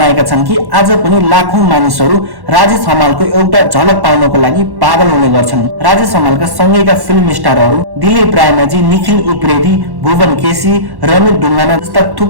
छन् कि आज पनि लाखौं मानिसहरू राजेश हमालको एउटा झलक पाउनको लागि पागल हुने गर्छन्। राजेश हमालका सँगैका फिल्म स्टारहरू दिलीप रायमाझी, निखिल उप्रेती, भुवन केसी, रमित ढुङ्गाना जस्ता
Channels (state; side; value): late; left; 1.1 ms